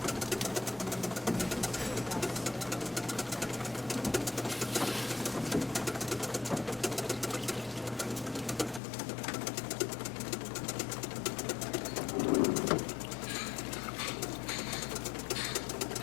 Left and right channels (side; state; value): right; drops out; at 8.8 s